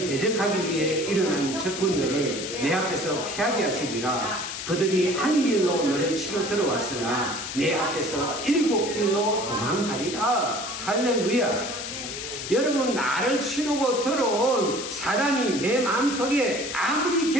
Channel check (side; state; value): left; noise; hiss, 7 dB below the sound